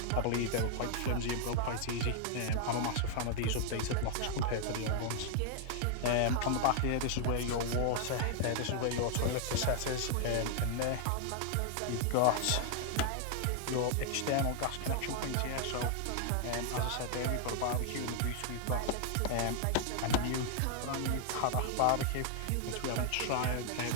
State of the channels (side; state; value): both; different; correlation 0.00